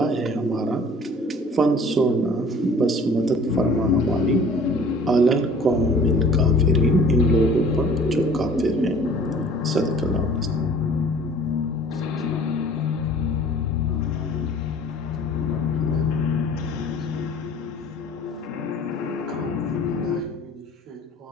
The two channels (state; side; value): normal; both; correlation 0.50